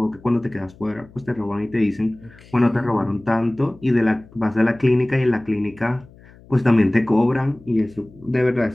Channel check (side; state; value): left; noise; hum, 24 dB below the sound